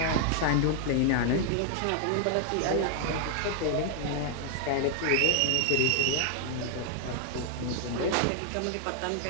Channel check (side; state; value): both; different; correlation -0.01